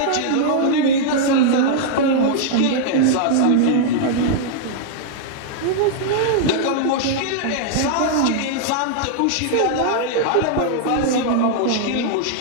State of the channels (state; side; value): different; both; correlation -0.01